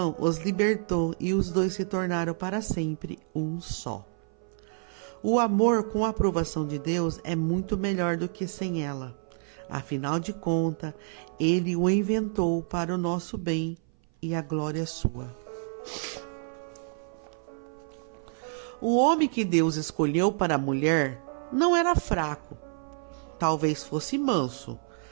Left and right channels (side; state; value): left; silent; 57 dB below the other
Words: os libertou e os dois se tornaram para sempre um só. O amor com a aprovação de Deus é muito melhor do que sem ela. Afinal de contas, ele o inventou para o nosso bem e a glória sua. O homem que Deus escolheu para a mulher não era fraco. Talvez fosse manso,